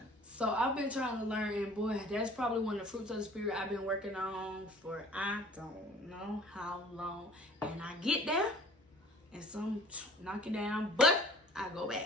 So I've been trying to learn, and boy, that's probably one of the fruits of the Spirit I've been working on for I don't know how long. And I get there, and some knock it down, but I go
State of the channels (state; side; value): normal; both; correlation 0.49